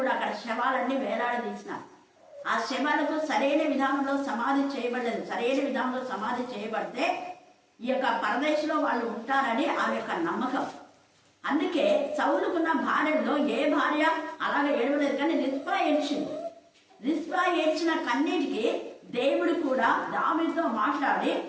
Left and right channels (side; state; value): both; identical; correlation 1.00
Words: అక్కడ శవాలన్నీ వేలాడదీసినారు. ఆ శవాలకు సరైన విధానంలో సమాధి చేయబడలేదు. సరైన విధానంలో సమాధి చేయబడితే ఈ యొక్క పరదేశంలో వాళ్ళు ఉంటారని ఆమె యొక్క నమ్మకం. అందుకే సౌలుకున్న భార్యలో ఏ భార్య అలాగే ఏడవలేదు, కానీ రిస్పా ఏడ్చింది. రిస్పా ఏడ్చిన కన్నీటికి దేవుడు కూడా దావీదుతో మాట్లాడి